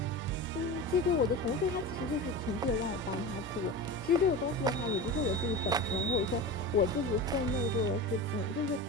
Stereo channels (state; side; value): normal; both; correlation 0.28